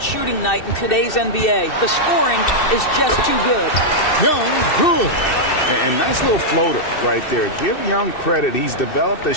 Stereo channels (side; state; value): right; late; 2.6 ms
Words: shooting night in today's NBA. The scoring is just too good. Young, good. And nice little floater right there. Give Young credit. He's developed the